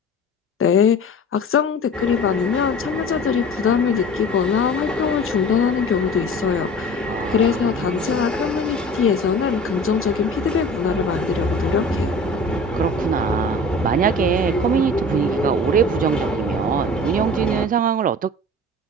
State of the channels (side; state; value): both; normal; correlation 0.40